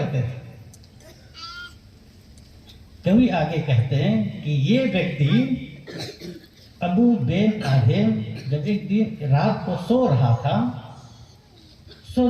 थे। कवि आगे कहते हैं कि ये व्यक्ति अबू बेन आदिम जब एक दिन रात को सो रहा था,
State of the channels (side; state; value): both; identical; correlation 1.00